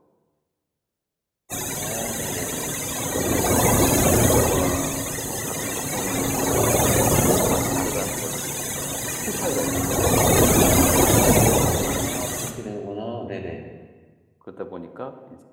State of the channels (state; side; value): identical; both; correlation 1.00